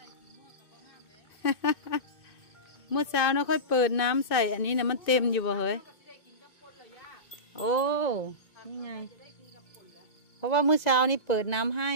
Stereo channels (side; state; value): right; late; 2.2 ms